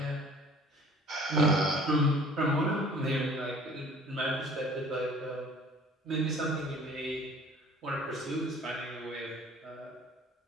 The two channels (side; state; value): both; normal; correlation 0.51